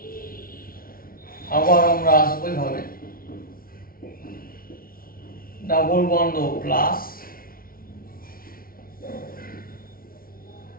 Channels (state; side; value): late; right; 0.43 ms